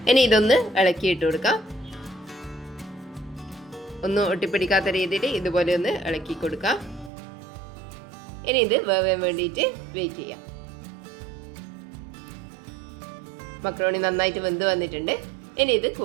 ഇനി ഇതൊന്ന് ഇളക്കി ഇട്ട് കൊടുക്കാം. ഒന്നും ഒട്ടിപ്പിടിക്കാത്ത രീതിയിൽ ഇതുപോലെ ഒന്ന് ഇളക്കി കൊടുക്കാം. ഇനി ഇത് വേവാൻ വേണ്ടിയിട്ട് വെയിറ്റ് ചെയ്യാം. മക്രോണി നന്നായിട്ട് വെന്ത് വന്നിട്ടുണ്ട്. ഇനി ഇത്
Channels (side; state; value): left; drops out; at 7.1 s